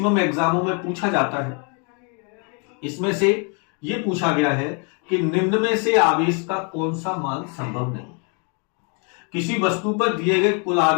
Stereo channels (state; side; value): quieter; right; 37.0 dB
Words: एग्जामों में पूछा जाता है, इसमें से ये पूछा गया है कि निम्न में से आवेश का कौन सा मान संभव नहीं। किसी वस्तु पर दिए गए कुल